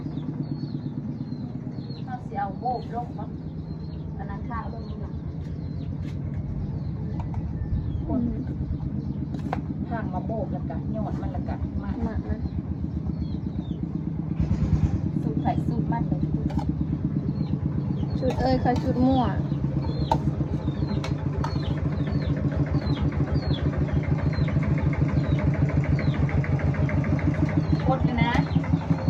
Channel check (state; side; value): identical; both; correlation 1.00